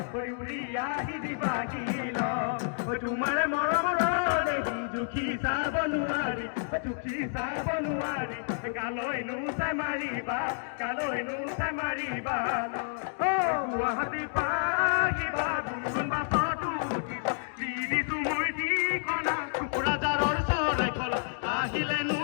উৰি আহি দিবা কিল তোমাৰ মৰমৰ দেখি দুখী চাব নোৱাৰি দুখী চাব নোৱাৰি গালৈ নোচাই মাৰিবা গালৈ নোচাই মাৰিবা গুৱাহাটী পাহিবা গুণগুণ বাছতো উঠিবা দি দিছো মই ঠিকনা কোকৰাঝাৰৰ চৰাইখলা আহিলে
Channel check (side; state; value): right; silent; digital silence